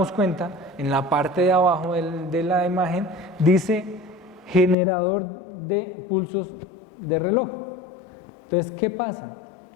cuenta, en la parte de abajo de la imagen, dice generador de pulsos de reloj. Entonces, ¿qué pasa?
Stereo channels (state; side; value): drops out; right; at 4.8 s